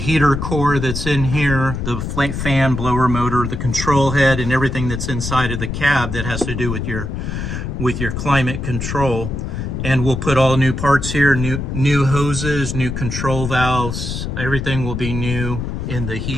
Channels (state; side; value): noise; left; rumble, 4 dB below the sound